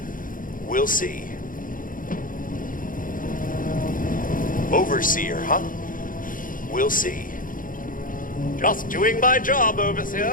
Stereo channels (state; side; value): late; right; 0.40 ms